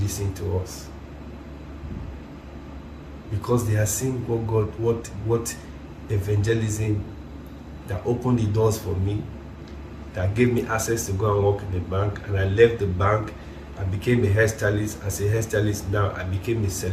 listen to us. Because they are seeing what evangelism that opened the doors for me, that gave me access to go and work in the bank, and I left the bank and became a hairstylist. As a hairstylist now, I became a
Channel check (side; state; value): both; identical; correlation 1.00